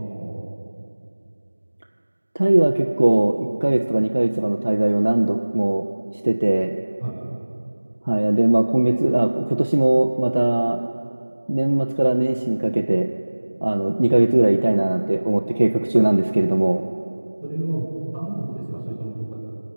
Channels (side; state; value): both; inverted; correlation -1.00